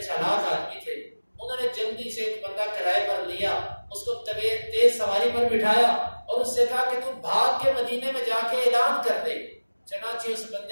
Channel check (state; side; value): inverted; both; correlation -1.00